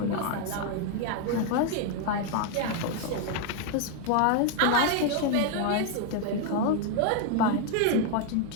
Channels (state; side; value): different; both; correlation 0.01